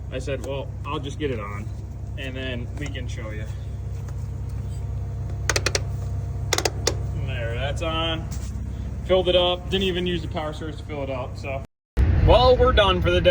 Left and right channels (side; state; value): both; identical; correlation 1.00